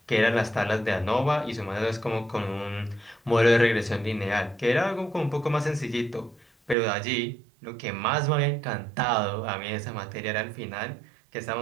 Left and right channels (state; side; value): drops out; left; at 6.8 s